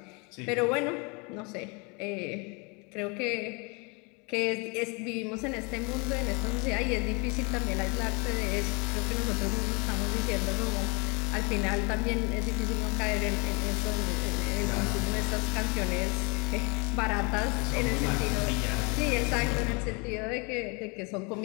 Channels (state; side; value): quieter; right; 30.8 dB